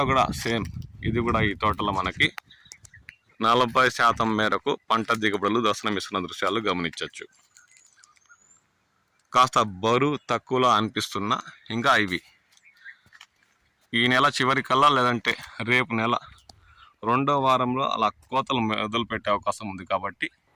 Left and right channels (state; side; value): identical; both; correlation 1.00